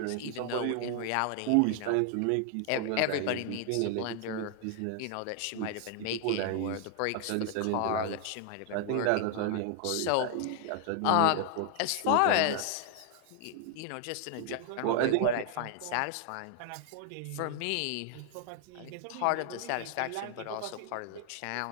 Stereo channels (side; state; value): both; different; correlation 0.00